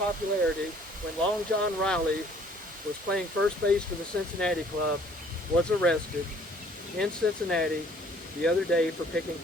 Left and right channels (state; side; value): normal; both; correlation 0.57